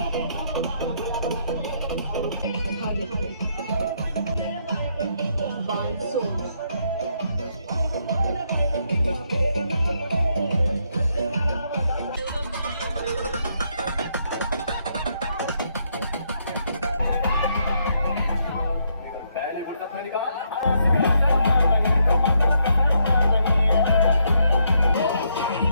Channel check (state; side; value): inverted; both; correlation -0.75